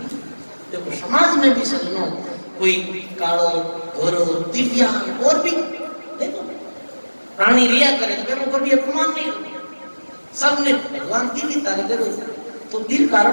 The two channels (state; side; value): inverted; both; correlation -1.00